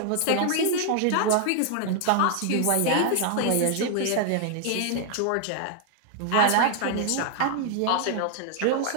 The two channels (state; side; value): different; both; correlation 0.00